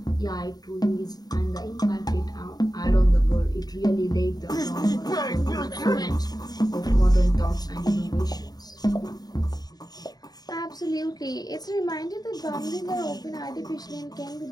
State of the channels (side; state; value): right; late; 0.19 ms